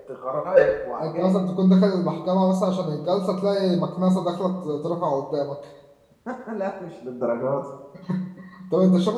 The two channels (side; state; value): both; identical; correlation 1.00